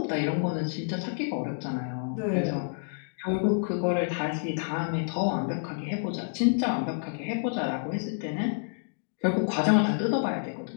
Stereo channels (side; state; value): right; silent; digital silence